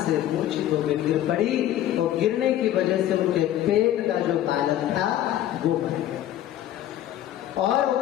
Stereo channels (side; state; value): right; quieter; 12.4 dB